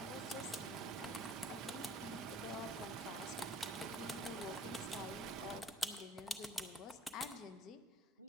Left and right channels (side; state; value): both; normal; correlation 0.50